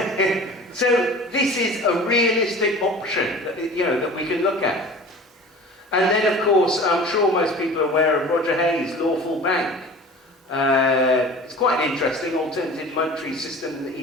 So this is a realistic option that, that we can look at. And then, of course, I'm sure most people are aware of Roger Hayes' Lawful Bank. It's quite an interesting alternative monetary system that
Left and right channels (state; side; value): normal; both; correlation 0.40